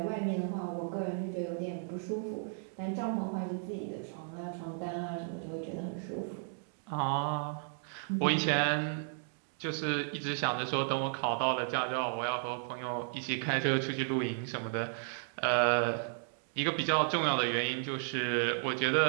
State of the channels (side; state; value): left; silent; digital silence